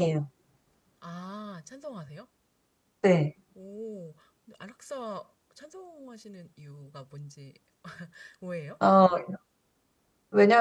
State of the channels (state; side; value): identical; both; correlation 1.00